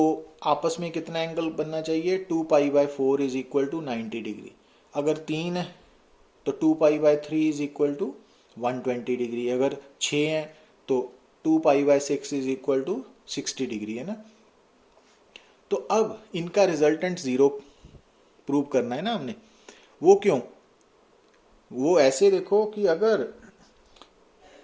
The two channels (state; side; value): identical; both; correlation 1.00